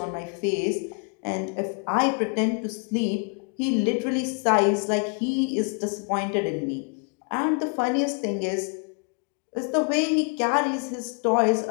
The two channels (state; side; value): quieter; right; 37.8 dB